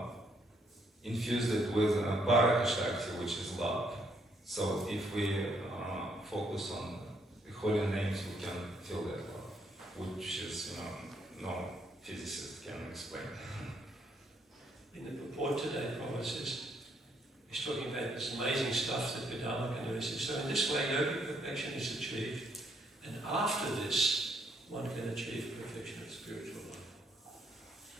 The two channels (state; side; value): normal; both; correlation 0.71